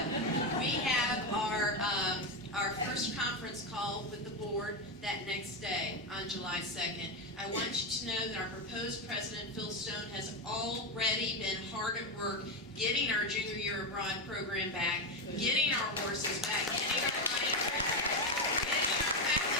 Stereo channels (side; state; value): both; normal; correlation 0.11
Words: We have our first conference call with the board that next day on July 2nd. I want you to know that our proposed president, Phil Stone, has already been hard at work getting our junior year abroad program back, getting our horses back, getting our money back, getting our